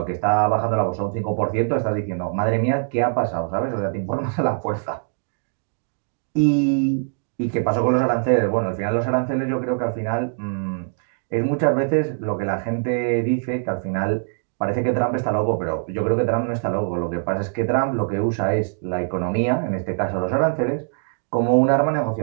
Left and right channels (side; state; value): left; silent; digital silence